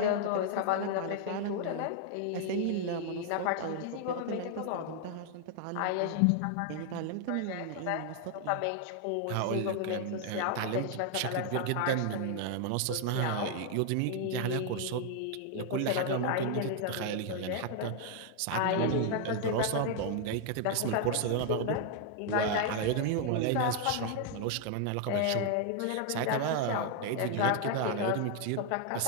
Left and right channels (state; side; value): different; both; correlation 0.00